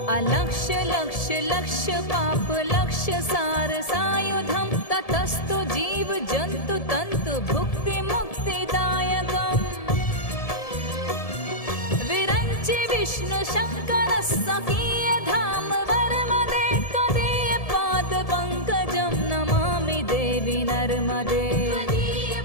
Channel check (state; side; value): late; right; 1.7 ms